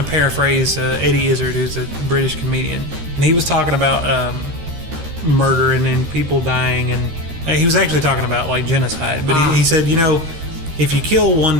paraphrase Eddie Izzard, who's a British comedian, and he was talking about murder and people dying, and he was actually talking about like genocide. But he said, if you kill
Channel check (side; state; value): left; late; 13 ms